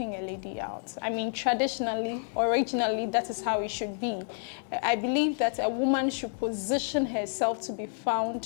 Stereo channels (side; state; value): right; silent; digital silence